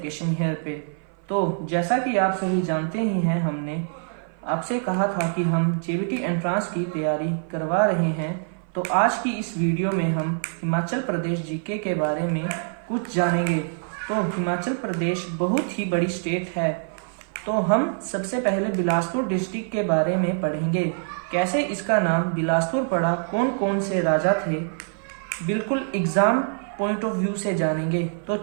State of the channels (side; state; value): left; silent; 56 dB below the other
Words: here पे। तो जैसा कि आप सभी जानते ही हैं, हमने आपसे कहा था कि हम जेबीटी एंट्रांस की तैयारी करवा रहे हैं। तो आज की इस वीडियो में हम हिमाचल प्रदेश जीके के बारे में कुछ जानेंगे। तो हिमाचल प्रदेश बहुत ही बड़ी स्टेट है। तो हम सबसे पहले बिलासपुर डिस्ट्रिक्ट के बारे में पढ़ेंगे। कैसे इसका नाम बिलासपुर पड़ा, कौन कौन से राजा थे, बिल्कुल एग्जाम पॉइंट ऑफ व्यू से जानेंगे। तो